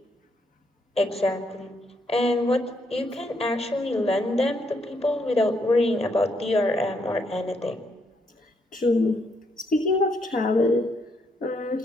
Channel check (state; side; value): normal; both; correlation 0.75